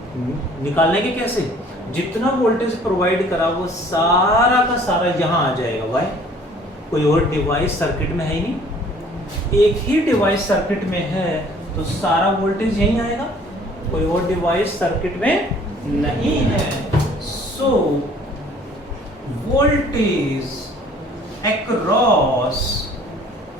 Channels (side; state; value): both; normal; correlation 0.54